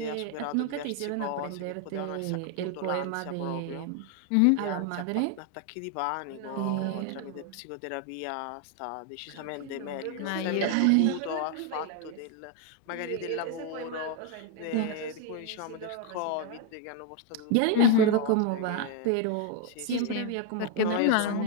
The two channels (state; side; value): different; both; correlation 0.01